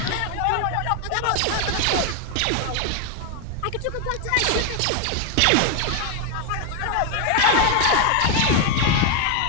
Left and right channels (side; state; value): both; different; correlation 0.01